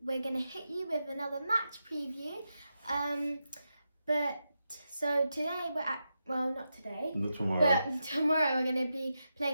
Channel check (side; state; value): both; inverted; correlation -0.88